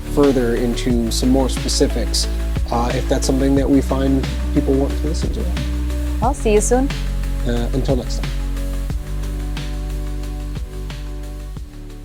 further into some more specifics, if that's something that we find people want to listen to. I'll see you soon. Until next time.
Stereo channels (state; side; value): identical; both; correlation 1.00